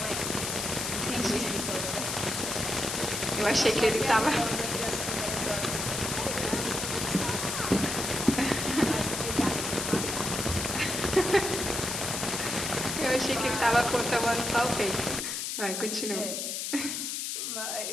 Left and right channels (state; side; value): noise; left; hiss, 3 dB below the sound